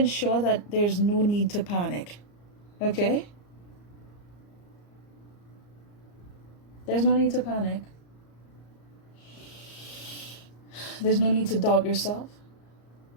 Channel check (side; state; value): right; late; 34 ms